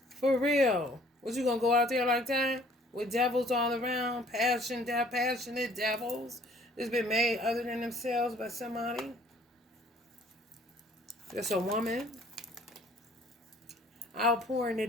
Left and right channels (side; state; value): both; normal; correlation 0.58